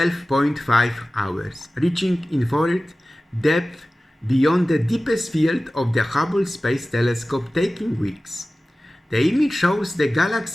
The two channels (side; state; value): both; normal; correlation 0.97